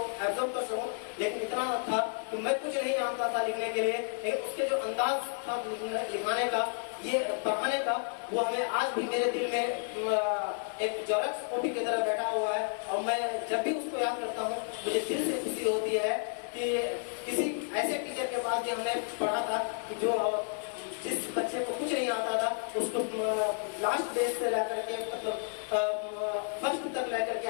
एब्जॉर्ब कर सकूं, लेकिन इतना था कि मैं कुछ नहीं जानता था लिखने के लिए, लेकिन उसके जो अंदाज था लिखाने का, ये पढ़ाने का, वो हमें आज भी मेरे दिल में एक जेरॉक्स कॉपी की तरह बैठा हुआ है। और मैं जब भी उसको याद करता हूँ मुझे दिल से खुशी होती है कि किसी ऐसे टीचर के पास भी हमने पढ़ा था कि जो जिस बच्चे को कुछ नहीं आता था उसको लास्ट बेस से लेकर के फर्स्ट तक लेकर के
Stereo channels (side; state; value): right; silent; 56 dB below the other